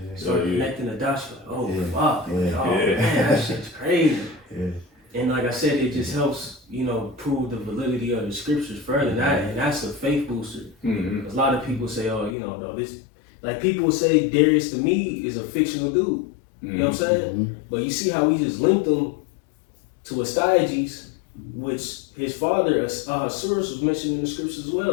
Start connecting the dots, you're like, oh, fuck. Yeah. Like, oh, man, that shit's crazy. Yeah. And like I said, it just helps, prove the validity of the scriptures further. And that's a faith booster. A lot of people say, oh, no, this, like people say Darius to me is a fictional dude. You know what I'm saying? But you see how we just linked them to Astyages, which his father, Ahasuerus, was mentioned in the scriptures as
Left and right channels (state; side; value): drops out; right; at 12.4 s